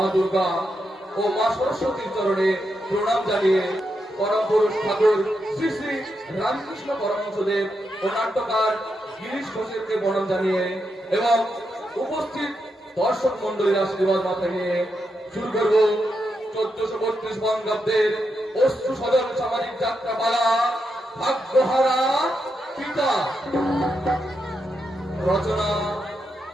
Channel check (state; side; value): normal; both; correlation 0.84